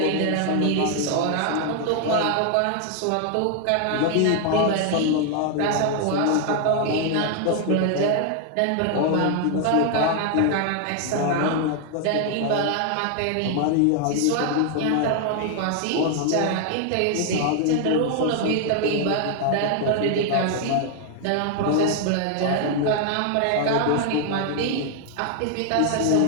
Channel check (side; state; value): both; different; correlation 0.00